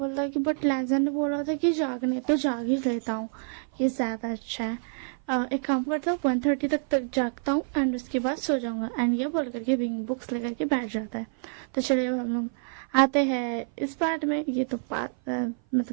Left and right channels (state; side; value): silent; left; 56 dB below the other